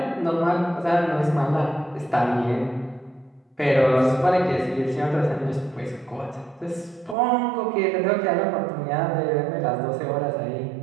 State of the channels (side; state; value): left; drops out; at 7.2 s